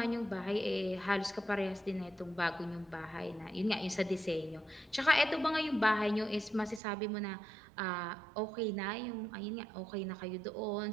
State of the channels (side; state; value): left; drops out; at 6.8 s